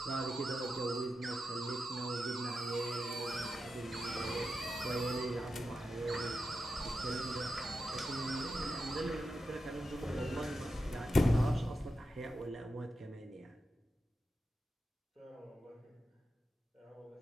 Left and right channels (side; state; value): both; normal; correlation 0.89